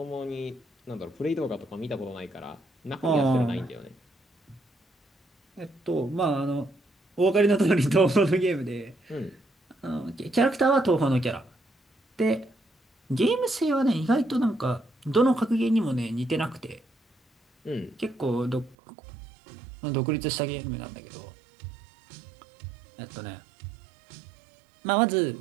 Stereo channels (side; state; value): left; drops out; at 18.8 s